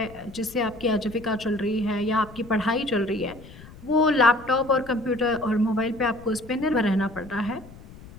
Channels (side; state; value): left; noise; rumble, 19 dB below the sound